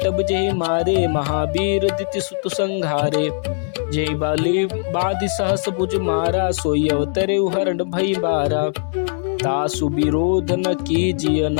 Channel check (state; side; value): silent; right; 66 dB below the other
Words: जेहि मारे, महावीर दिति सुत संघारे। जेहि बाली बाधि सहस भुज मारा, सोई अवतरे हरण भई बारा। तासु विरोध न कीजिय